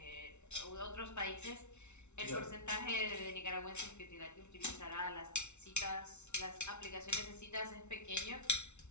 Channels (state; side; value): late; right; 0.82 ms